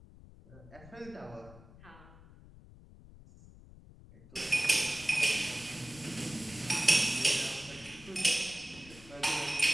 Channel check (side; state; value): left; noise; rumble, 20 dB below the sound